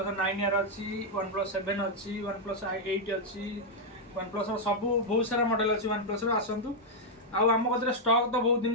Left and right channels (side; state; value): both; normal; correlation -0.02